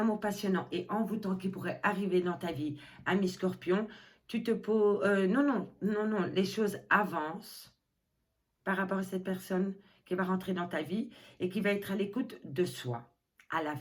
passionnant et envoûtant qui pourrait arriver dans ta vie, ami Scorpion, tu te poses... non, les choses avancent par rapport à cette personne qui va rentrer dans ta vie et qui va être à l'écoute de soi à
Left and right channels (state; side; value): identical; both; correlation 1.00